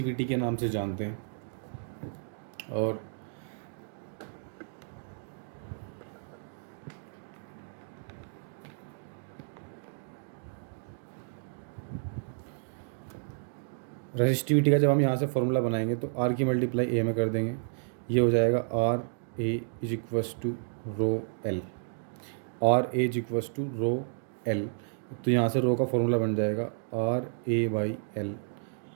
के नाम से जानते हैं। और रेसिस्टिविटी का जब हम यहाँ से फॉर्मूला बनाएंगे तो आर की मल्टीप्लाई ए में कर देंगे, ये हो जाएगा R A is equals to rho L, R A is equals to rho L. तो यहाँ से रो का फॉर्मूला बन जाएगा R A by L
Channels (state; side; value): silent; left; digital silence